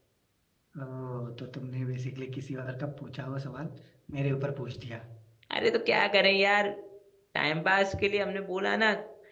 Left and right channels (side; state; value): both; identical; correlation 1.00